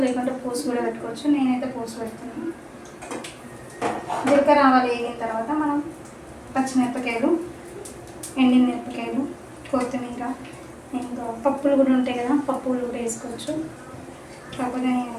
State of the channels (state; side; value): identical; both; correlation 1.00